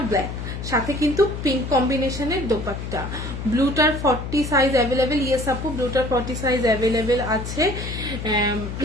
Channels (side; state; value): left; noise; hum, 6 dB below the sound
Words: ব্ল্যাক, সাথে কিন্তু পিঙ্ক কম্বিনেশনের দোপাট্টা। ব্লুটার 40 সাইজ অ্যাভেলেবেল, ইয়েস আপু ব্লুটার 40 সাইজ অ্যাভেলেবেল আছে,